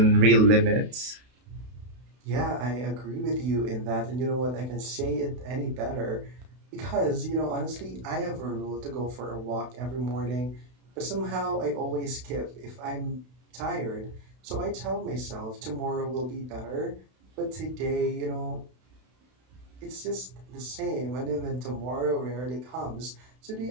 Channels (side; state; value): left; late; 32 ms